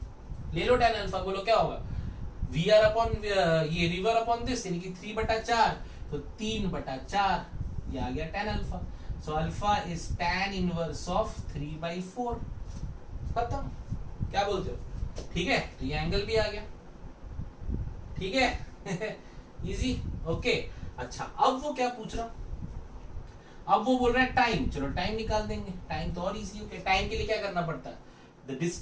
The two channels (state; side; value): identical; both; correlation 1.00